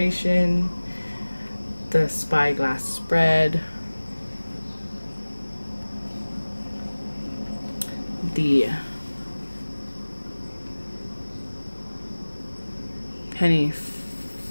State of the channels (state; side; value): inverted; both; correlation -1.00